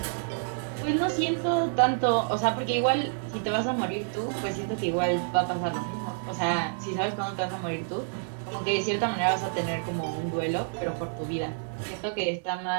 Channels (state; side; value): silent; left; 59 dB below the other